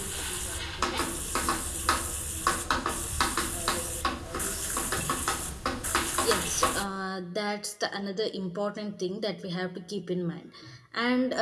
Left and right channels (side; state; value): both; identical; correlation 1.00